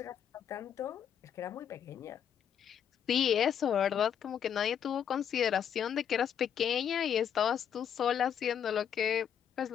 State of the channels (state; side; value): quieter; right; 8.6 dB